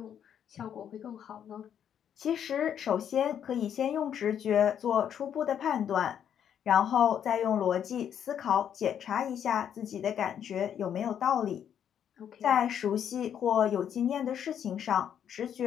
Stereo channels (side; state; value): right; quieter; 9.1 dB